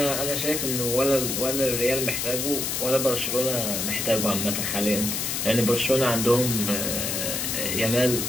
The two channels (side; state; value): left; noise; hiss, 1 dB below the sound